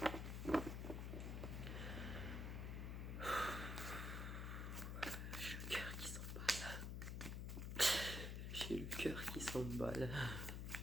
J'ai le cœur qui s'emballe.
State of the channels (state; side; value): noise; left; hum, 3 dB below the sound